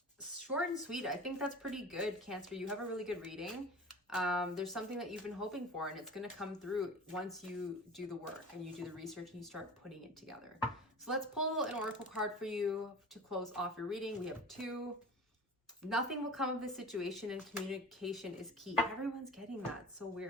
short and sweet. I think that's pretty good, Cancer. You have a really good reading. There's something that you've been hoping for, and it's going to come through once you do the work and you do the research and you start putting it together. So let's pull an oracle card for you to close off your reading. We have two. Nothing will come of this situation, and communication is key. Everyone's getting that. It's so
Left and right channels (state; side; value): normal; both; correlation 0.38